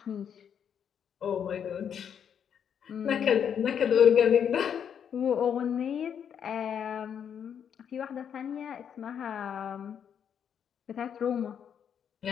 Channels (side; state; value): right; quieter; 8.2 dB